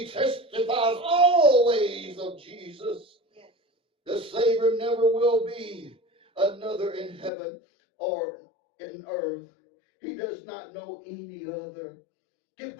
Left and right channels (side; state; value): right; drops out; at 7.3 s